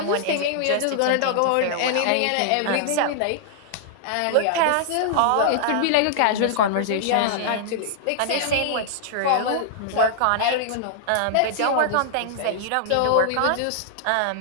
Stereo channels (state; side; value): different; both; correlation -0.01